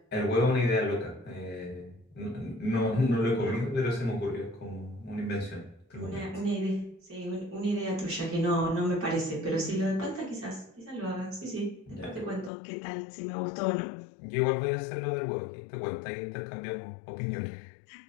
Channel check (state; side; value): drops out; right; at 12.5 s